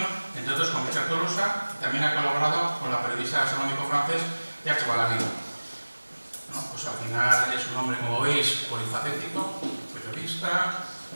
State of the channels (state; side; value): inverted; both; correlation -1.00